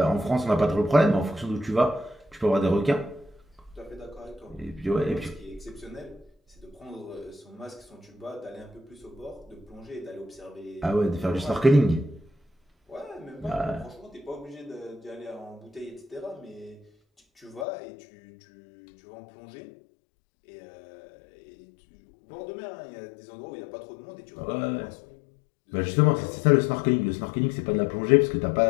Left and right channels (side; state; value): right; drops out; at 17.7 s